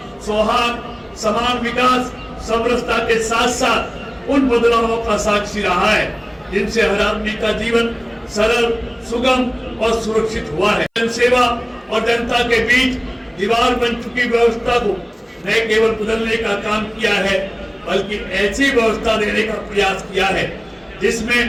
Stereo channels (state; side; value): identical; both; correlation 1.00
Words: सौहार्द, समान विकास, समरसता के साथ साथ उन बदलावों का साक्षी रहा है जिनसे हर आदमी का जीवन सरल, सुगम और सुरक्षित हुआ है। जनसेवा और जनता के बीच दीवार बन चुकी व्यवस्था को न केवल बदलने का काम किया है, बल्कि ऐसी व्यवस्था देने का प्रयास किया है